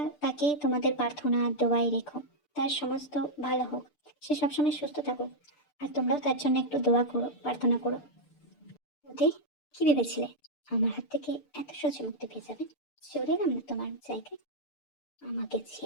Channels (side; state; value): right; late; 6.8 ms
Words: তাকে তোমাদের প্রার্থনা দোয়াই রেখো, তার সমস্ত ভালো হোক, সে সবসময় সুস্থ থাকুক। আর তোমরাও তার জন্য একটু দোয়া করো, প্রার্থনা করো। ওতে কি ভেবেছিলে আমার হাত থেকে এত সহজে মুক্তি পেয়ে যাবে? চলে এলাম না তোমার জায়গায়, আমাকে